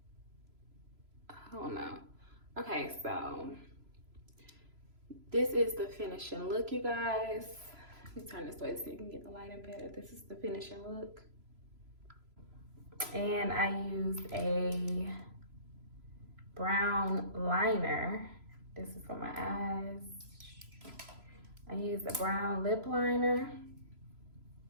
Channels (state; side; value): late; left; 3.0 ms